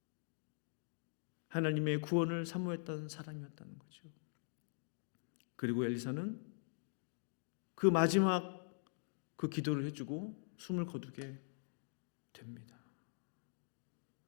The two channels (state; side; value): silent; right; digital silence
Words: 하나님의 구원을 사모했던 사람이었다는 거죠. 그리고 엘리사는 그 마지막 그 기도를 해주고 숨을 거두게 됩니다.